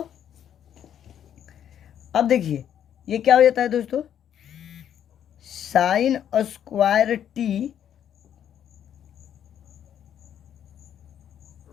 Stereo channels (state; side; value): quieter; right; 9.7 dB